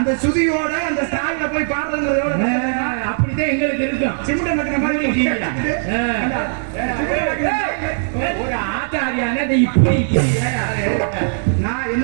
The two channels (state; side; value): silent; left; 67 dB below the other